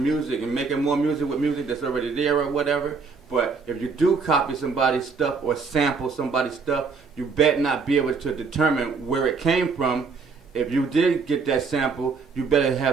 and making more music with music that's already there or whatever. But if you do copy somebody's stuff or sample somebody's stuff, you better not be able to determine where it came from. If you did get that sample, you better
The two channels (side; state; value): left; quieter; 4.9 dB